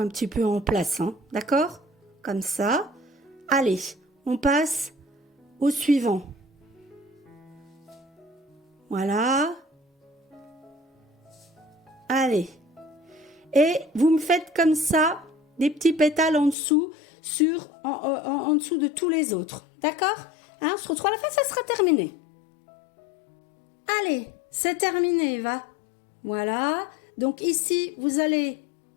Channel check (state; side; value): drops out; right; at 16.6 s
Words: petit peu en place, hein, d'accord? Comme ça. Allez, on passe au suivant. Voilà. Allez. Et vous me faites comme ça des petits pétales en dessous, en dessous de tous les autres, d'accord? Hein, on se retrouve à la fin, ça sera terminé. Allez, c'est terminé, va. Voilà. Donc ici, vous allez